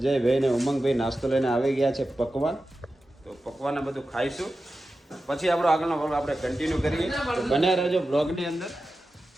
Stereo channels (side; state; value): both; normal; correlation 0.93